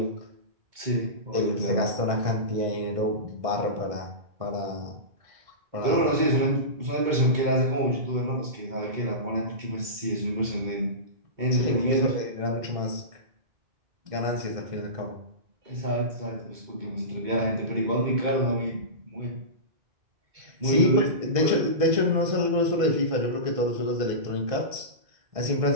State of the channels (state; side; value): late; left; 2.2 ms